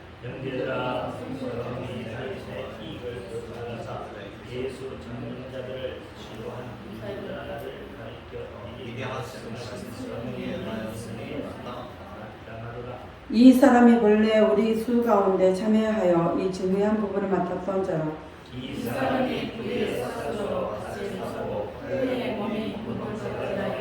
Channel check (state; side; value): identical; both; correlation 1.00